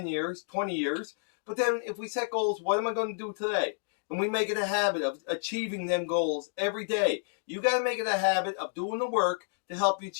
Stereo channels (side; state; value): right; silent; digital silence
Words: years, 20 years. But then if we set goals, what am I going to do today? And we make it a habit of achieving them goals every day. You got to make it a habit of doing the work to help you